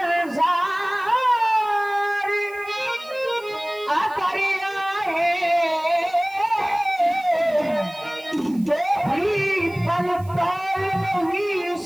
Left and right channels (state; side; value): noise; right; hiss, 25 dB below the sound